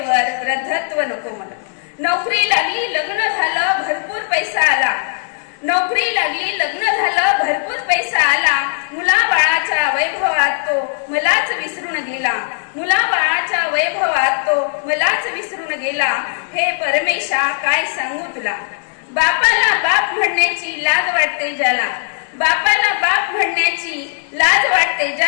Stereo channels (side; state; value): right; silent; digital silence